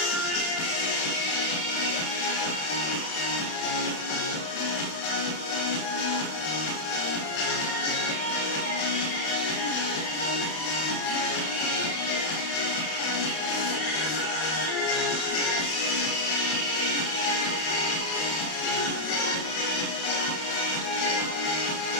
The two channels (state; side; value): late; right; 31 ms